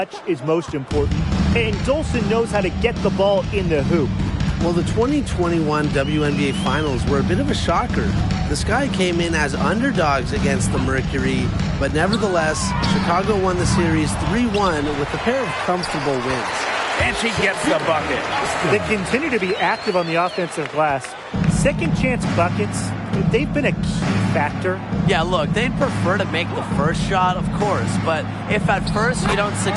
is most important. And Dolson knows how to get the ball in the hoop. Well, the 2021 WNBA Finals were a bit of a shocker. The Sky came in as underdogs against the Mercury, but nevertheless, Chicago won the series 3-1 with a pair of comfortable wins. And she gets the bucket. They continue to be active on the offensive glass. Second chance buckets, they've been a key factor. Yeah, look, they'd prefer to make the first shot, of course, but if at first you don't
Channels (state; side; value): identical; both; correlation 1.00